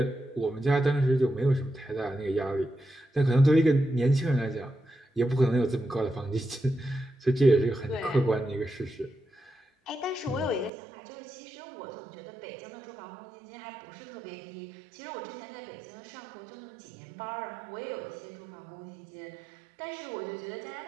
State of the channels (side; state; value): left; drops out; at 10.7 s